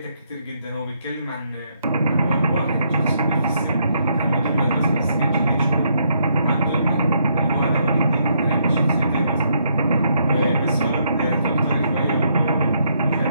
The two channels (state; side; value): inverted; both; correlation -0.74